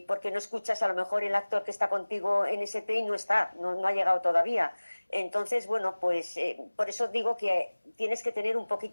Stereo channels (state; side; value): inverted; both; correlation -1.00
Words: porque no escuchas a lo mejor el actor que está contigo en ese take no ha llegado todavía. Entonces, bueno, pues por eso digo que tienes que tener un